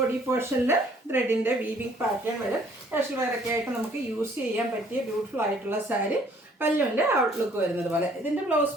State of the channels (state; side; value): normal; both; correlation 0.60